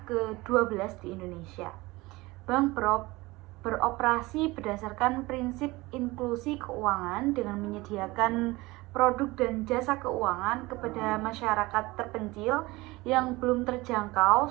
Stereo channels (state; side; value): quieter; left; 21.3 dB